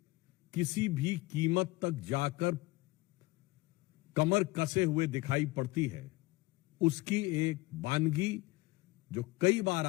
किसी भी कीमत तक जाकर कमर कसे हुए दिखाई पड़ती है, उसकी एक वानगी जो कई बार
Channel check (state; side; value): quieter; right; 21.3 dB